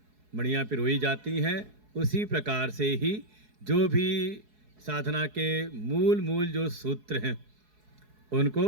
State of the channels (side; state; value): left; late; 4.7 ms